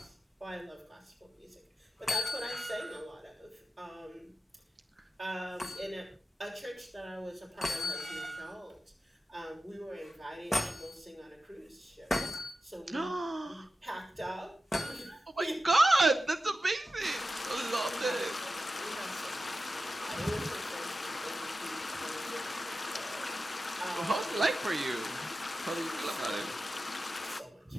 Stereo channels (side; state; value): both; normal; correlation 0.92